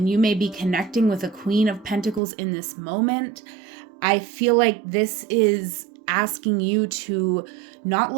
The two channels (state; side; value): drops out; left; at 2.2 s